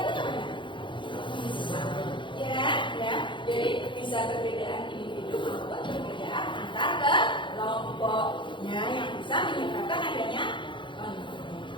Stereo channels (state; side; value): late; right; 0.23 ms